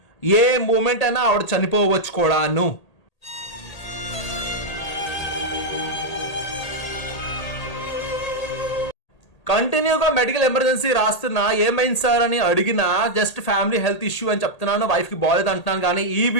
ఏ moment అయినా ఆవిడ చనిపోవచ్చు కూడాను. కంటిన్యూగా మెడికల్ ఎమర్జెన్సీ రాస్తున్నా ఏమైంది సార్ అని అడిగినా జస్ట్ ఫ్యామిలీ హెల్త్ ఇష్యూ అని చెప్తున్నాను, వైఫ్కి బాగాలేదు అంటున్నాను. కానీ ఈ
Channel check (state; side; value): late; right; 1.8 ms